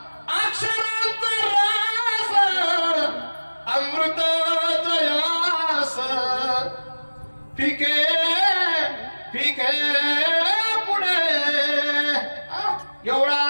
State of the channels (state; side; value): inverted; both; correlation -1.00